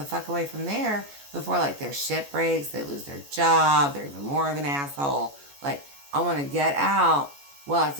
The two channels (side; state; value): left; late; 14 ms